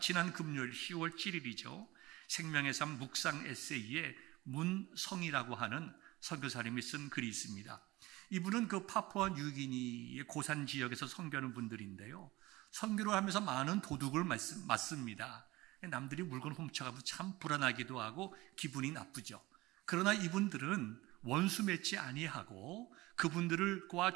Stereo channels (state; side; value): quieter; left; 19.8 dB